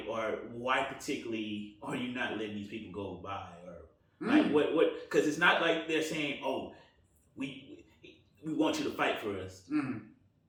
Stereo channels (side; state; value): both; identical; correlation 1.00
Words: particularly are you not letting these people go by, or like what because it's not like they're saying, oh, we want you to fight for us.